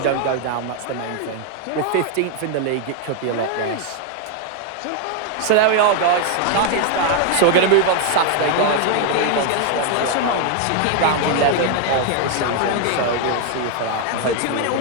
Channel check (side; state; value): both; different; correlation 0.00